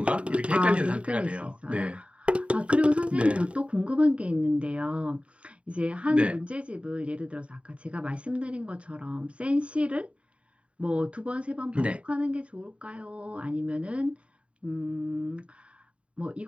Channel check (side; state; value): left; late; 0.061 ms